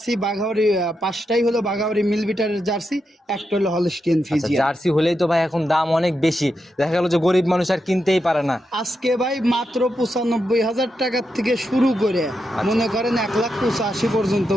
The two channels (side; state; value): both; normal; correlation 0.86